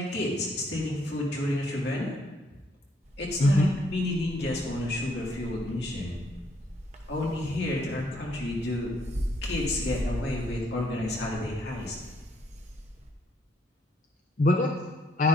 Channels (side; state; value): both; normal; correlation 0.70